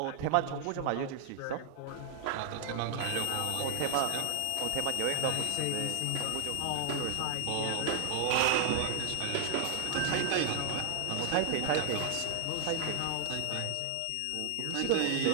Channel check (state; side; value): different; both; correlation 0.00